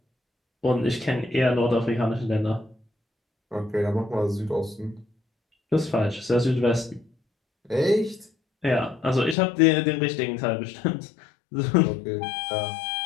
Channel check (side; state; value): right; drops out; at 9.3 s